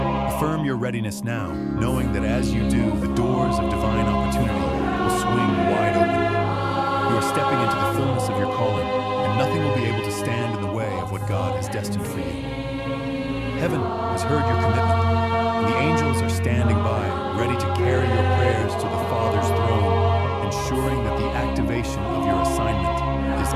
Affirm your readiness now, knowing that as you do, the doors of divine opportunity will swing wide open. You are stepping into the fullness of your calling, and nothing will be able to stand in the way of what God has destined for you. Heaven has heard your commitment, and the angels are standing by, ready to carry your prayers to the Father's throne, ensuring that the activation of your assignment is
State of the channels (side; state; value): both; identical; correlation 1.00